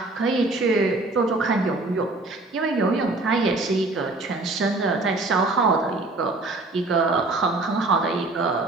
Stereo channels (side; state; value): left; quieter; 3.1 dB